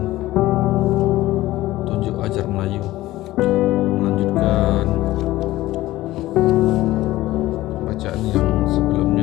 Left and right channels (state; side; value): quieter; right; 16.7 dB